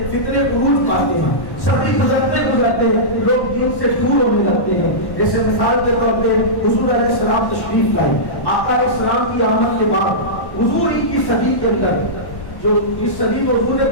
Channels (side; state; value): right; late; 1.1 ms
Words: فتنے عروج پاتے ہیں، صدی گزرتے گزرتے لوگ دین سے دور ہونے لگتے ہیں۔ جیسے مثال کے طور پہ حضور علیہ السلام تشریف لائے، آقا علیہ السلام کی آمد کے بعد حضور ہی کی صدی کے اندر جو اس صدی میں حضور نے